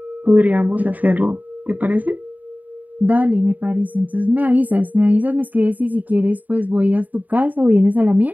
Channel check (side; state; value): left; late; 0.079 ms